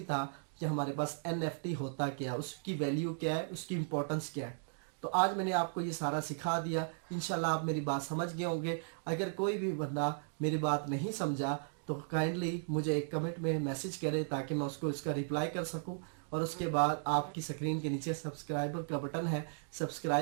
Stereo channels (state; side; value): silent; left; digital silence